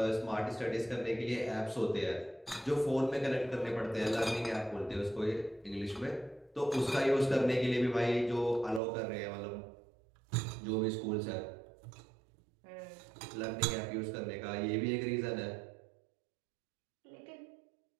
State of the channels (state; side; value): drops out; left; at 8.8 s